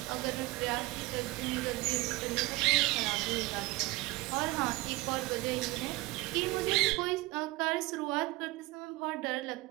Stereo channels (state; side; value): quieter; left; 20.7 dB